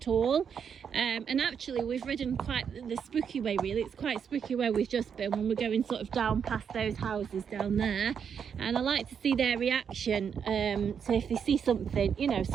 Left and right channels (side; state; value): left; quieter; 7.3 dB